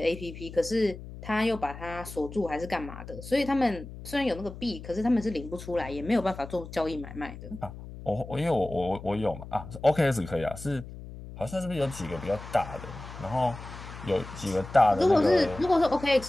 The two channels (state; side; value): noise; left; hum, 13 dB below the sound